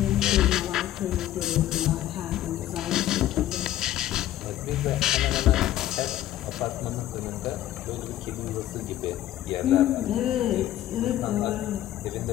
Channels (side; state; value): right; quieter; 13.3 dB